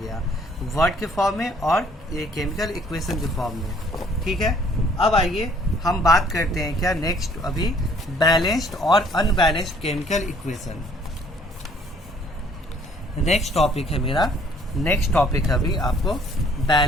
वर्ड के फॉर्म में और ये केमिकल इक्वेशन के फॉर्म में, ठीक है। अब आइए हम बात करते हैं क्या नेक्स्ट, अभी बैलेंस्ड और unbalanced chemical equation. Next topic है मेरा, नेक्स्ट टॉपिक है अभी आपको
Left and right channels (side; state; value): both; normal; correlation 0.60